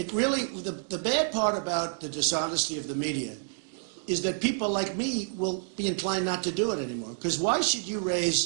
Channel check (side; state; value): left; silent; digital silence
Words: really, the bad part about the dishonesty of the media is that people like me will be inclined not to do it anymore. Because why should you